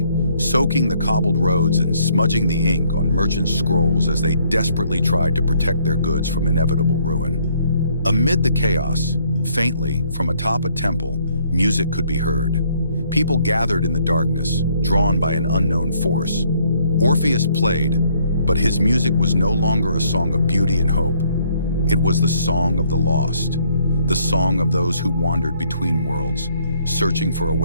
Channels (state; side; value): inverted; both; correlation -0.66